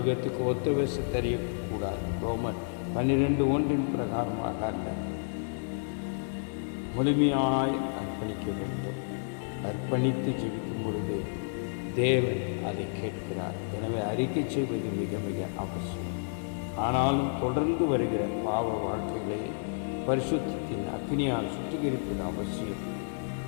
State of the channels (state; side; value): silent; right; digital silence